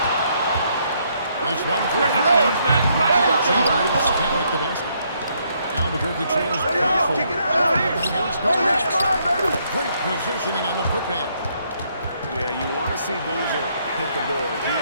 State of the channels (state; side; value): inverted; both; correlation -0.72